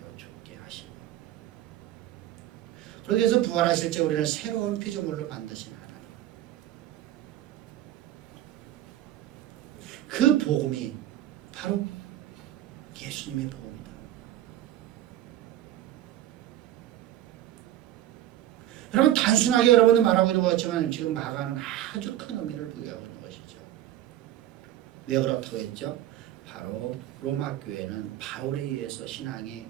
죽게 하시고 그렇게 해서 부활하실 때 우리는 새로운 피조물로 만드신 하나님. 그 복음이 바로 예수님의 복음이다. 여러분 단순하게 여러분이 말하고 있는 것 같지만 지금 마가는 아주 큰 의미를 부여하고 있는 것이죠. 왜 그렇다고 했죠? 바로 로마 교회는 바울에 의해서 신앙이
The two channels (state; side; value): quieter; left; 12.9 dB